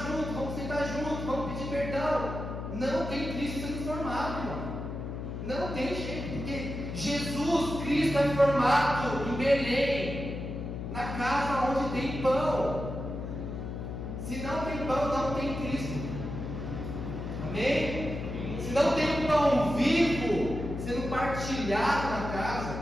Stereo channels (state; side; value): noise; left; hum, 6 dB below the sound